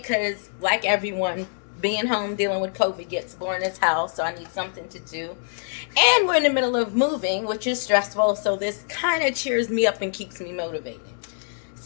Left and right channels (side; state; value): right; silent; digital silence